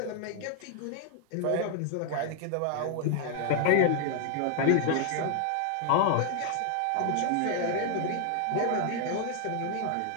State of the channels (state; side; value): different; both; correlation 0.00